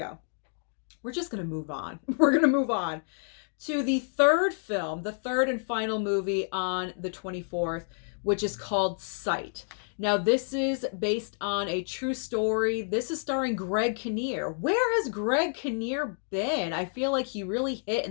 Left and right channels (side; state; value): right; silent; digital silence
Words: We're just going to move on. We're going to move on to the third film, the third and final movie on the 24th, which is called Sight. Now, this is based on a true story. This is starring Greg Kinnear. Where has Greg Kinnear been? I feel like he really hit